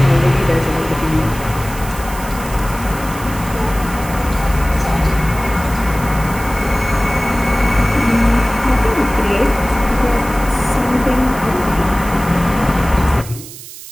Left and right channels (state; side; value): noise; right; hiss, 15 dB below the sound